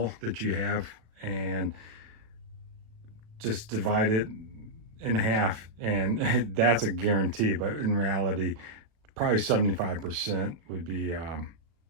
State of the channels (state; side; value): late; left; 37 ms